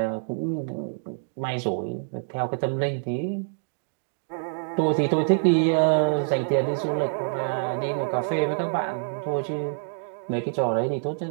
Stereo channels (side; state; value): left; silent; digital silence